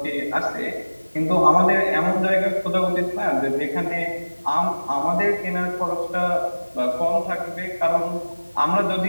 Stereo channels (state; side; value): inverted; both; correlation -1.00